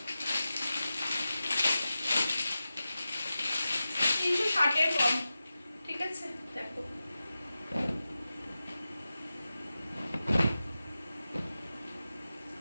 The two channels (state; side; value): inverted; both; correlation -0.93